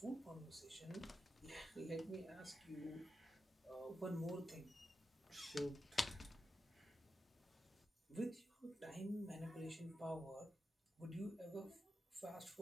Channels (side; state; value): both; normal; correlation 0.89